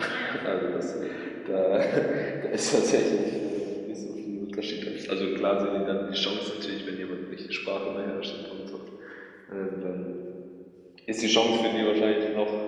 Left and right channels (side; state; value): both; identical; correlation 1.00